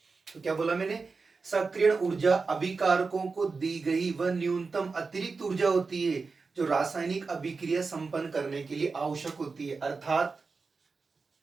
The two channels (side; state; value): left; quieter; 4.4 dB